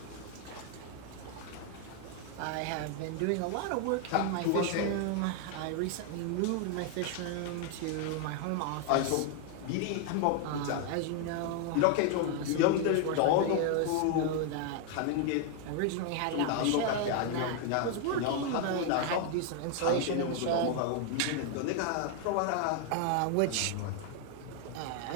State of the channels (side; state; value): both; different; correlation 0.00